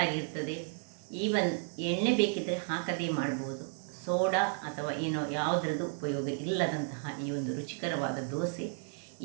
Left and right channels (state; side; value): silent; left; 56 dB below the other